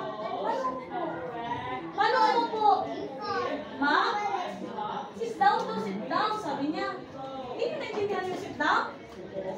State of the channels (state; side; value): identical; both; correlation 1.00